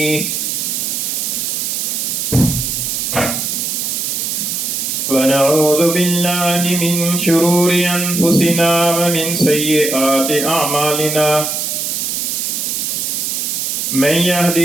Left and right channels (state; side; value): noise; right; hiss, 1 dB below the sound